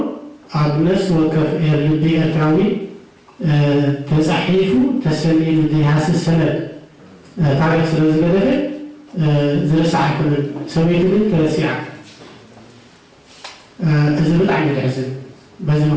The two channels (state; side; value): identical; both; correlation 1.00